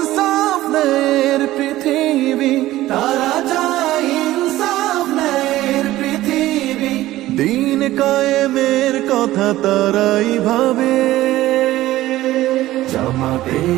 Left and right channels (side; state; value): left; quieter; 15.8 dB